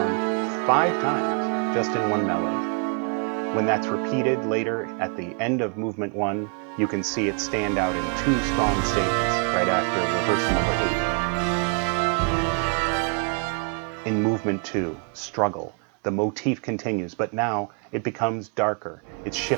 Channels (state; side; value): quieter; left; 38.9 dB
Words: 5 times, just in one melody. When that's repeated later at the end of movement 1, you can see it stand out in 2 strong statements right after rehearsal number 8. In movement 2, struggle, the motif continues, but now it becomes darker. It